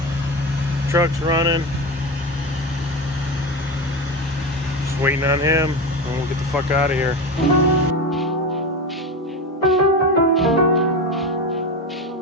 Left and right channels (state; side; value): normal; both; correlation 0.21